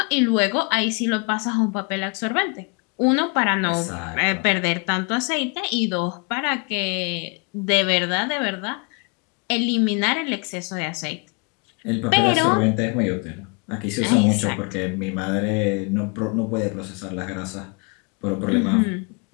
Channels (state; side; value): quieter; right; 33.9 dB